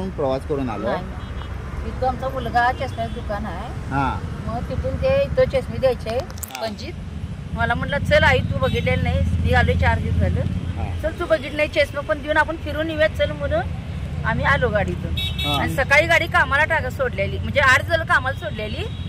प्रवास करून आलो? इथं आमचा मुलगा चष्म्याचं दुकान आहे. मग तिथून ते इथं चष्मे द्यायचे पंजीत. मला म्हटलं चल आई तू बघितलेलं नाही, मी आलोय 4 दिवस झालं, चल तू बघितलं नाही चष्मा पण देऊन आपण फिरून येऊयात चल म्हणून आम्ही आलो गाडीतून. आणि सकाळी गाडी कामाला सोडलेली म्हणजे 8 झालं कामाला सोडलेली,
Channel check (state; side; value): identical; both; correlation 1.00